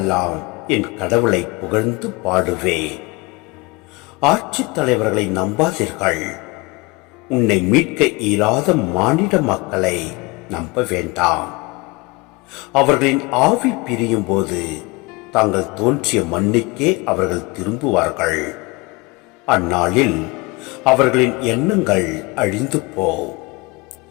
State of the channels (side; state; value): right; quieter; 25.1 dB